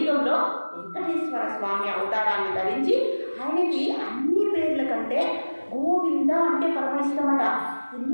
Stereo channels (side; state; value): both; inverted; correlation -1.00